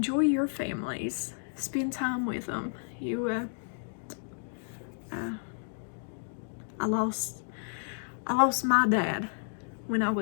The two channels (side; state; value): right; silent; digital silence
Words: your families. Spend time with them. I lost my dad when I